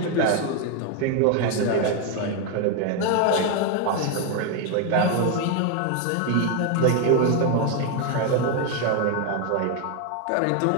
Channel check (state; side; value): different; both; correlation 0.01